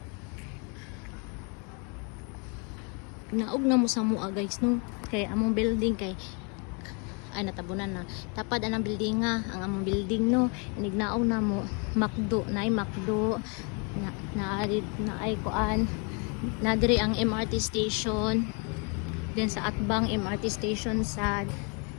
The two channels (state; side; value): quieter; right; 34.9 dB